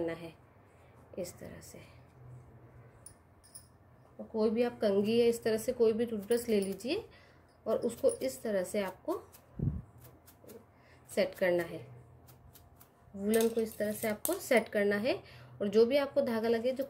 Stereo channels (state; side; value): identical; both; correlation 1.00